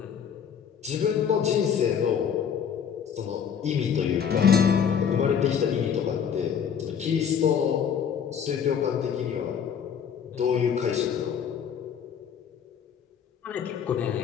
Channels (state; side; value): quieter; right; 7.7 dB